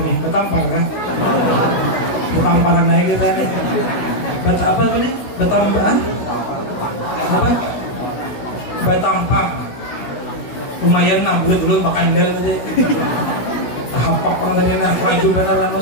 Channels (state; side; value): late; right; 16 ms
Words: nih. Batampar kan? Batamparan naik kita nih. Apa nih? Batampar? Apa? Batampar. Lumayan lah, boleh makan dari hapak tadi nak maju benar